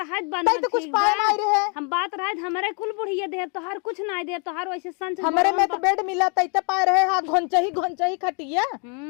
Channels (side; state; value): right; quieter; 37.8 dB